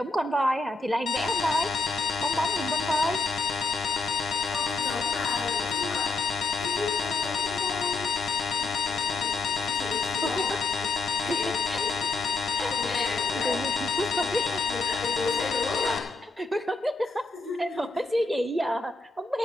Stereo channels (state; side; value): quieter; right; 3.6 dB